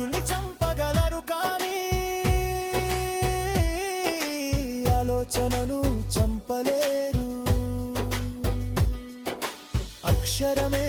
చంపగలరు కానీ ఆలోచనను చంపలేరు. అక్షరమే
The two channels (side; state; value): both; identical; correlation 1.00